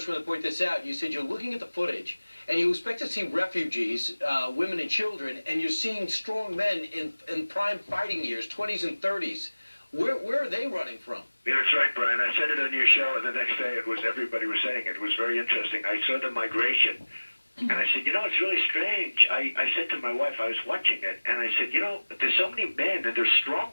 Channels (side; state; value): both; inverted; correlation -1.00